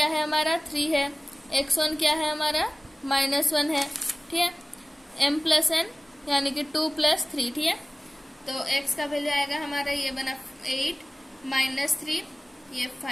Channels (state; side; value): normal; both; correlation 0.97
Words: है हमारा 3 है, x1 क्या है हमारा -1 है। ठीक है, m प्लस n यानी कि 2 + 3। ठीक है, तो x का वैल्यू आएगा हमारा, ये बना 8 -3 ये